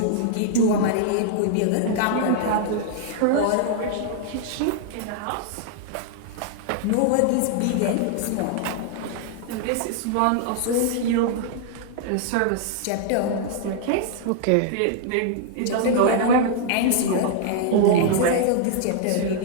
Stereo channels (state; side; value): different; both; correlation -0.01